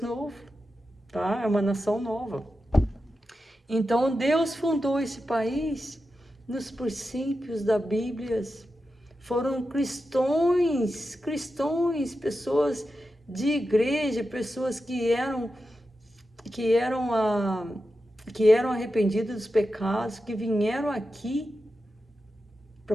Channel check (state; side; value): normal; both; correlation 0.91